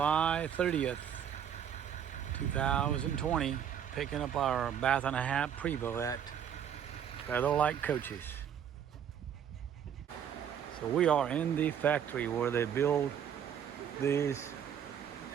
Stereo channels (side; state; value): left; quieter; 8.8 dB